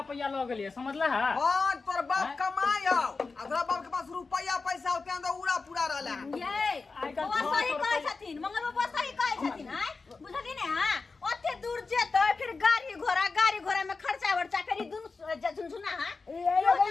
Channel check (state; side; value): quieter; right; 4.2 dB